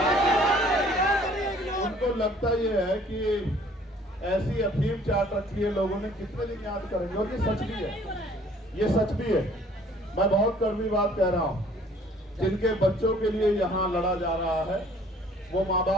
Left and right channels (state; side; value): normal; both; correlation 0.56